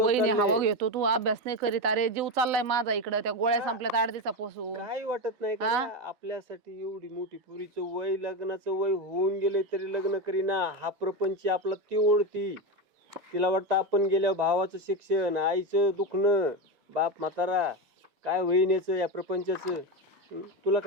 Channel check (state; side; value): normal; both; correlation 0.14